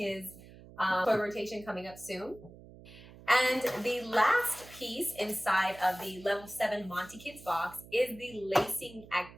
toy rotation coming up soon. And the last piece inside of the Level 7 Monti Kids box is the lacing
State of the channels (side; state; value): right; noise; hum, 19 dB below the sound